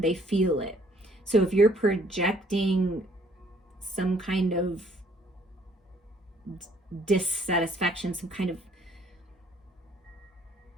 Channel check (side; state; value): both; normal; correlation 0.62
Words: they feel it. So if you're projecting some kind of dissatisfaction, some kind of